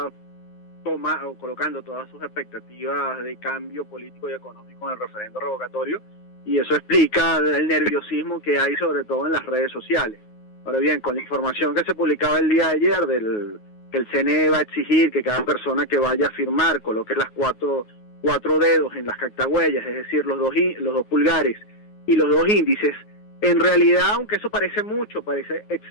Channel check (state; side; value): late; right; 9.5 ms